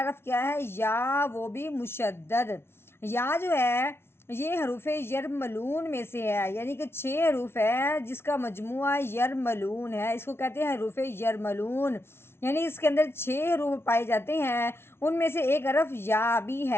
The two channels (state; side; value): late; right; 0.12 ms